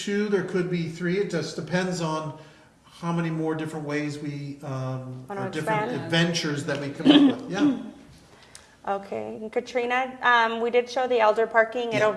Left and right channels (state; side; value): identical; both; correlation 1.00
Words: there could be 3. It just depends on how many more different ways we, Wanna or different expand? adventures that we come up with. Yeah. Okay, and Katrina, we did show the elder parking. It'll Yeah.